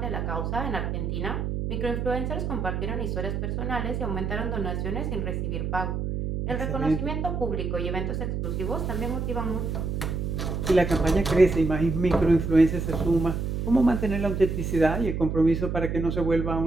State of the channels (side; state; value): right; noise; hum, 2 dB below the sound